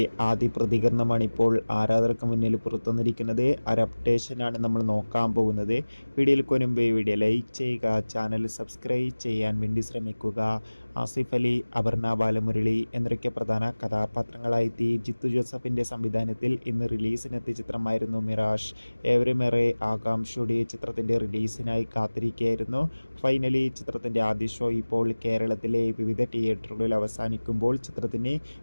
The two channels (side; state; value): both; inverted; correlation -1.00